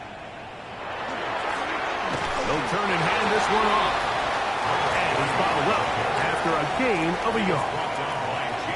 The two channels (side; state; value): both; identical; correlation 1.00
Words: They'll turn and hand this one off. And he's bottled up after a gain of a yard.